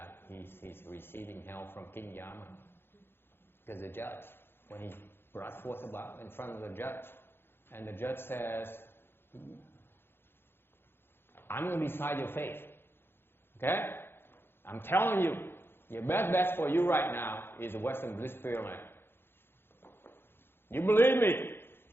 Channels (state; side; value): late; right; 0.11 ms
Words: he's receiving help from King Yama, because the judge, when he brought forth about in front of the judge, and the judge says, I'm going to decide your fate, okay? I'm telling you, your best bet for you right now is the Western Bliss Pureland. You believe me?